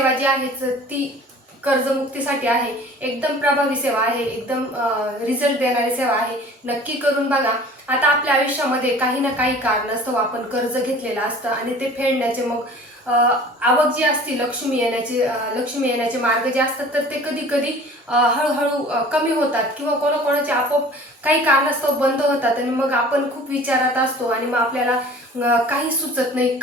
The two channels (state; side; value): normal; both; correlation 0.45